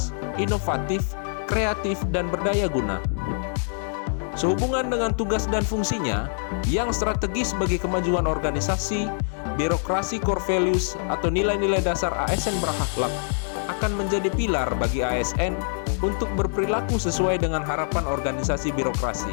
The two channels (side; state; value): right; silent; digital silence